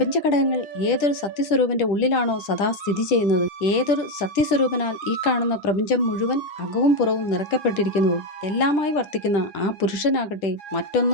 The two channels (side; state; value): right; late; 10 ms